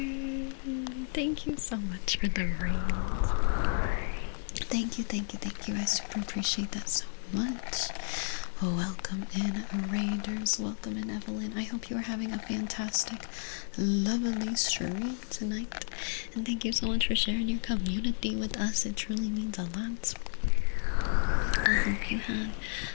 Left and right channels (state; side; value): silent; right; digital silence